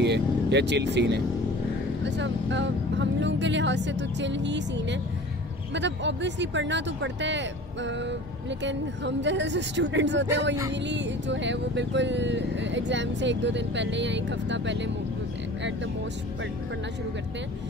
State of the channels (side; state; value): both; normal; correlation 0.42